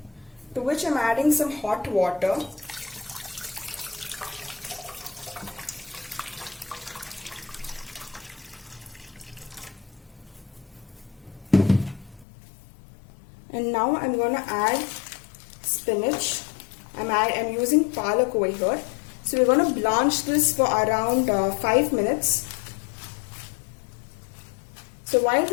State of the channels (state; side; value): drops out; right; at 12.2 s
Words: to which I'm adding some hot water. And now I'm going to add spinach. I'm using palak over here. So we're going to blanch this for around 5 minutes. So while